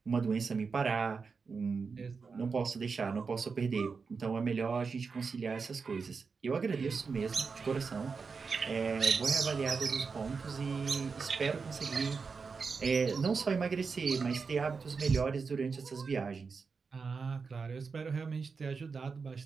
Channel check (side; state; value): left; quieter; 5.0 dB